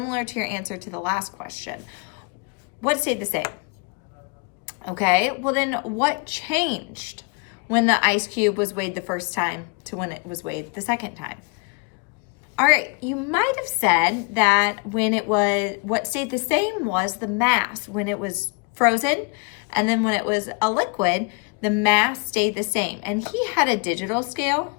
to your answer to the last question. What stayed the same? Okay, well then what changed when the ice cube was weighed the first time to when it was weighed the second time? All right, you might have said that what stayed the same was the mass when it was frozen, and then when it was a liquid, the mass stayed the same. And he had a digital scale.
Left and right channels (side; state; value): right; quieter; 33.9 dB